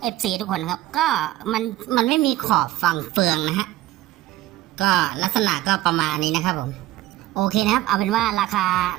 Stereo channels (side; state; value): left; quieter; 15.7 dB